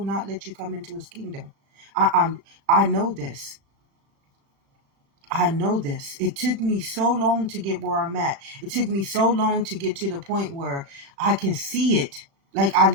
not let you come into its kingdom. I know this. I know this. It took me so long to get where I'm at. It took me so long to get to the point where I can see it. Like I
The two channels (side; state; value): left; late; 36 ms